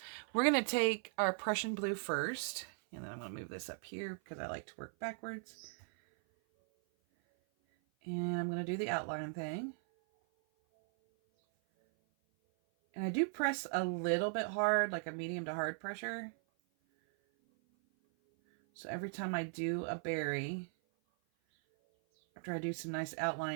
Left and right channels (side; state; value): left; silent; 52 dB below the other